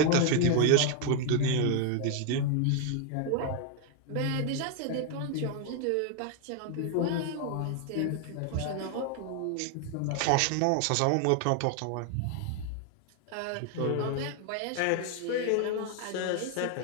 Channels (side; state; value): both; different; correlation 0.00